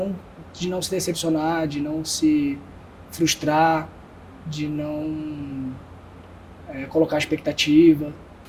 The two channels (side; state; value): both; identical; correlation 1.00